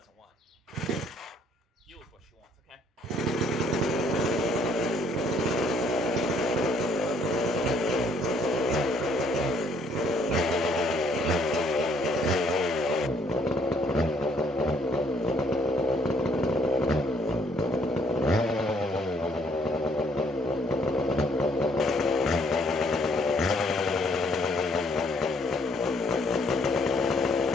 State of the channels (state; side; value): normal; both; correlation 0.66